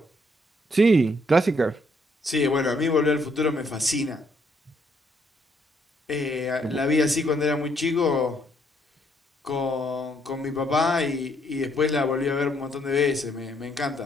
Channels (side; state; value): both; normal; correlation 0.70